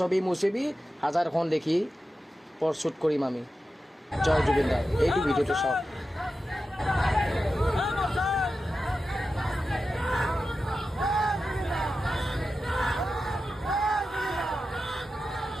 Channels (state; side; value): normal; both; correlation 0.92